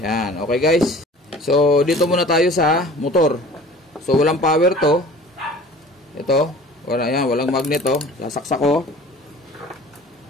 okay guys. So dito muna tayo sa motor. So walang power to. Ito, walang magnet sasaksak ko.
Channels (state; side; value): normal; both; correlation 0.45